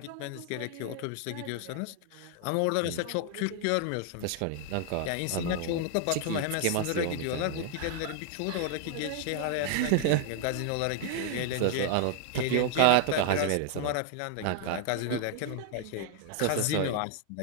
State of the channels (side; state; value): both; different; correlation 0.00